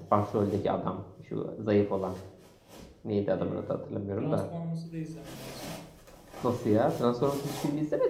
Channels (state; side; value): identical; both; correlation 1.00